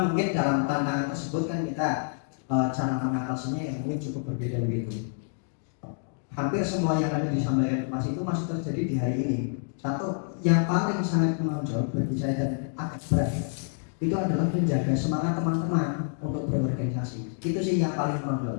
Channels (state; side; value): silent; right; digital silence